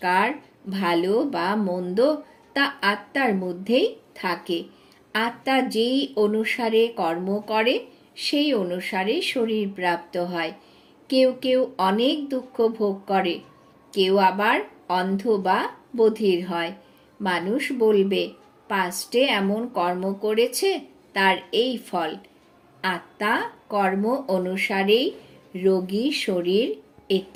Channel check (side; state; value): both; identical; correlation 1.00